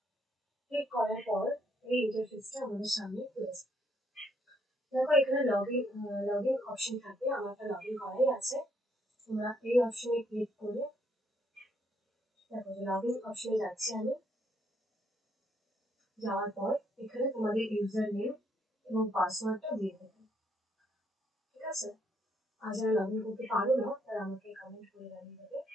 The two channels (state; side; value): normal; both; correlation 0.71